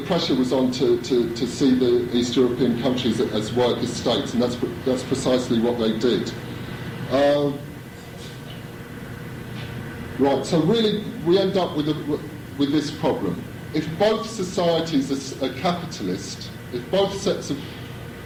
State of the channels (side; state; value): both; identical; correlation 1.00